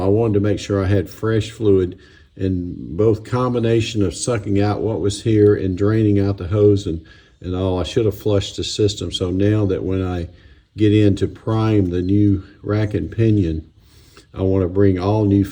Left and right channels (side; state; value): both; identical; correlation 1.00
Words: wanted to make sure I had fresh fluid, and both combination of sucking out what was here and draining out the hose and all. I should have flushed the system. So now that when I get in to prime the new rack and pinion, I want to bring all new